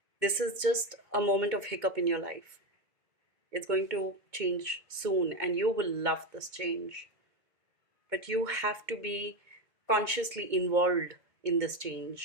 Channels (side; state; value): left; late; 2.2 ms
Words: this is just a moment of hiccup in your life. It's going to change soon and you will love this change, but you have to be consciously involved in this